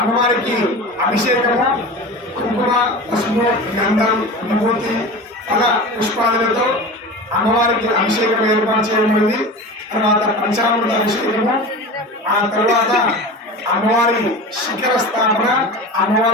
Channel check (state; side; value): normal; both; correlation 0.32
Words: అభిషేకము, కుంకుమ, పసుపు, గంధం, విభూతి, ఫల పుష్పాదులతో అమ్మవారికి అభిషేకం ఏర్పాటు చేయబడింది. తర్వాత పంచామృత అభిషేకము, ఆ తర్వాత అమ్మవారి శిఖర స్థాపన,